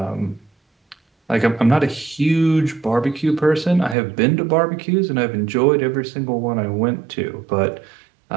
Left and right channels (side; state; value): left; drops out; at 4.0 s